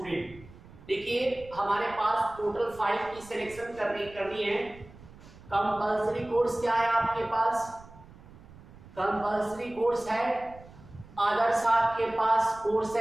देखिए हमारे पास टोटल 5 की सिलेक्शन करनी है। कंपल्सरी कोर्स क्या है आपके पास? कंपल्सरी कोर्स है अदर्स आपके पास कोर्स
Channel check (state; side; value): noise; right; rumble, 20 dB below the sound